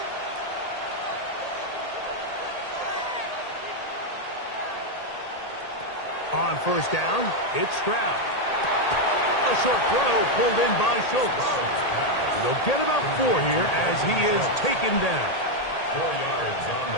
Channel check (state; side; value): late; right; 1.8 ms